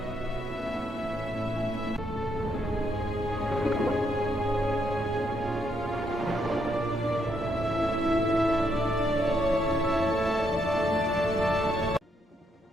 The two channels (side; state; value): both; normal; correlation 0.76